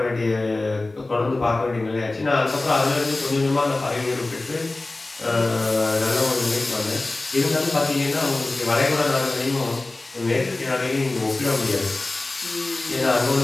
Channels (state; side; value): quieter; right; 3.1 dB